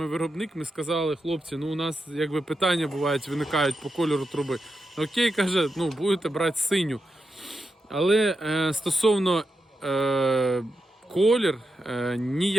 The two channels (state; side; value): normal; both; correlation 0.87